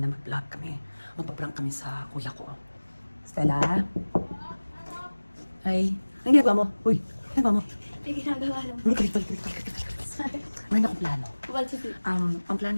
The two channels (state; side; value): inverted; both; correlation -1.00